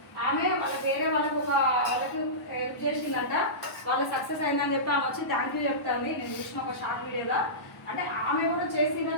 ఆమె వేరే వాళ్ళకు హెల్ప్ చేసిందంట, వాళ్ళ సక్సెస్ అయిందని చెప్పి ఆమె వచ్చి థ్యాంక్ యూ చెప్తాంది. నేను చూసిన ఒక షార్ట్ వీడియోలో. అంటే ఆమె కూడా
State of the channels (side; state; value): right; late; 1.0 ms